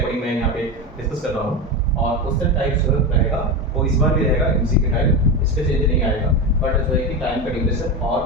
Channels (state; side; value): normal; both; correlation 0.19